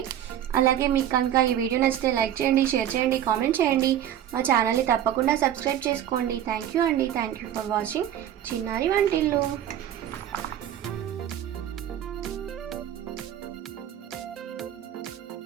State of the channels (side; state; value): left; quieter; 10.9 dB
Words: అలాగే మీకు కనుక ఈ వీడియో నచ్చితే లైక్ చేయండి, షేర్ చేయండి, కామెంట్ చేయండి. మా ఛానల్ని తప్పకుండా సబ్స్క్రైబ్ చేసుకోండి. థ్యాంక్ యూ అండి. థ్యాంక్ యూ ఫర్ వాచింగ్ చిన్నారి వంటిల్లు.